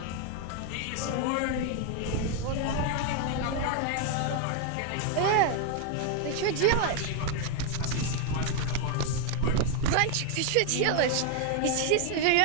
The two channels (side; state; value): both; different; correlation 0.01